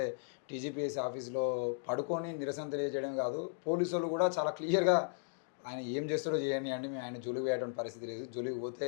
టీజీపీఎస్సీ ఆఫీస్లో పడుకొని నిరసన తెలియజేయడం కాదు, పోలీసులు కూడా చాలా క్లియర్గా ఆయన ఏం చేస్తాడో చేయండి, మేము ఆయన జోలికి పోయేటువంటి పరిస్థితి లేదు, జోలికి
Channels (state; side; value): silent; right; digital silence